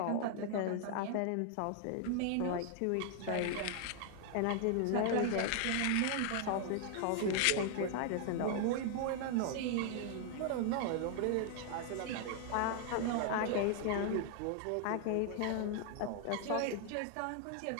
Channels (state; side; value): different; both; correlation 0.00